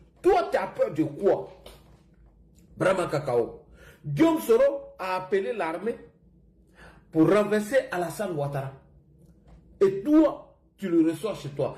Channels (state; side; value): identical; both; correlation 1.00